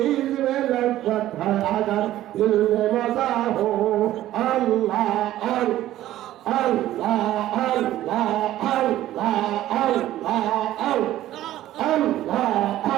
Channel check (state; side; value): quieter; left; 13.9 dB